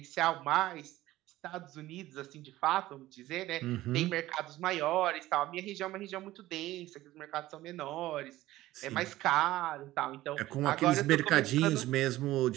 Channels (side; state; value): left; quieter; 16.2 dB